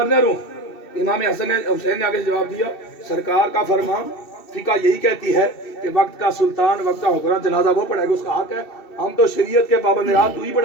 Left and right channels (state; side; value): late; right; 2.7 ms